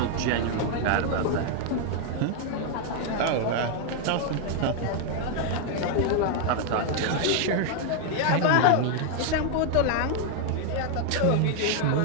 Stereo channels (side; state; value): both; different; correlation 0.00